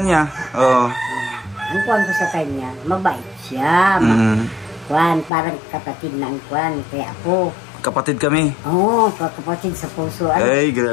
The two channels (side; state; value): right; drops out; at 5.3 s